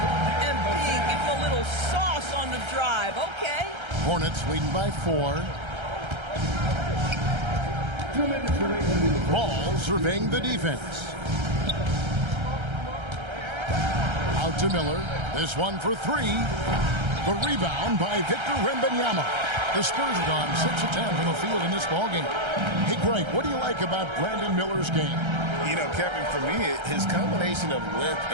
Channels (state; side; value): late; left; 1.3 ms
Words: MP, give him a little sauce on the drive. Okay. Hornets leading by 4. Ball surveying the defense. Out to Miller. This one for 3. The rebound by Victor Wembanyama. The Spurs have gone 6 of 10 from the field in this ballgame. Hey, Greg, what do you like about Brandon Miller's game? You know, Kevin, for me, his combination of length